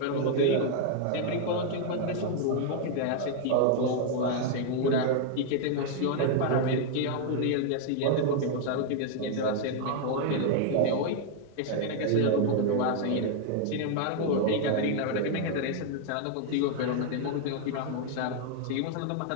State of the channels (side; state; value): both; different; correlation 0.00